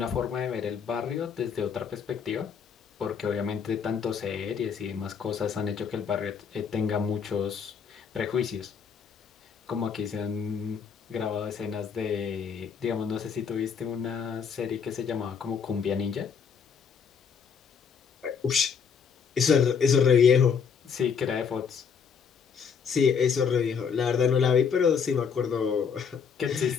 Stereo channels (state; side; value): quieter; right; 6.6 dB